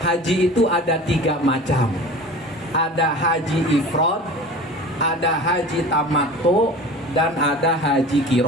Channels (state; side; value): normal; both; correlation 0.38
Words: Haji itu ada 3 macam. Ada haji ifrad, ada haji tamattu, dan ada haji